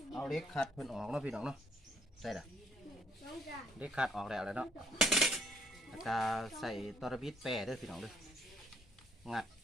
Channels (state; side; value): normal; both; correlation 0.67